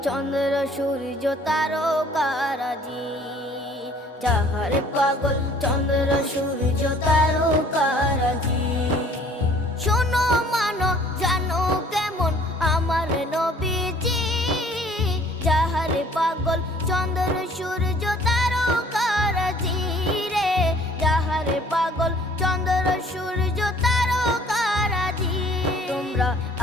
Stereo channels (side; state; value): both; normal; correlation 0.56